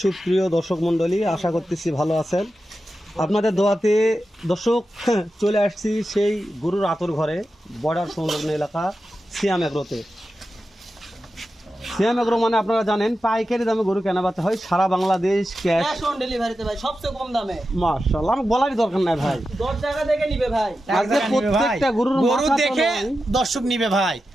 সুপ্রিয় দর্শক মণ্ডলী? আশা করতেছি ভালো আছেন। আপনাদের দোয়াতে দর্শক চলে আসছি সেই গরুর আতর ঘরে, বর্ডার সংলগ্ন এলাকা সিয়াম এগ্রোতে। সিয়াম এগ্রো মানে আপনারা জানেন পাইকারি দামে গরু কেনাবেচা হয় সারা বাংলাদেশ, ক্যাশ অন ডেলিভারিতে ভাই, সবচেয়ে কম দামে। মাশাআল্লাহ, আমার বলারই দরকার নাই ভাই। 10 টাকা দেখে নিবে ভাই। আজকে প্রত্যেকটা গরুর গরু মাথা তো দেখে নয়। দর্শক নিবে ভাই,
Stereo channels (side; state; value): both; normal; correlation 0.91